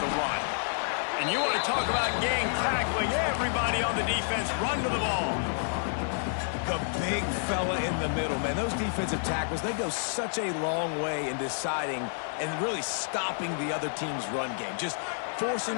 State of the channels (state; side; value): silent; right; 58 dB below the other